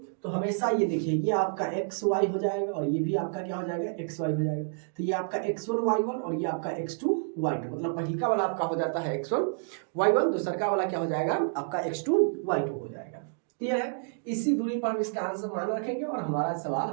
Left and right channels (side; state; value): left; silent; digital silence